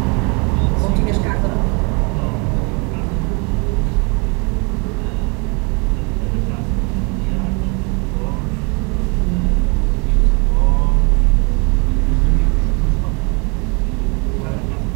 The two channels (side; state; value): left; quieter; 32.1 dB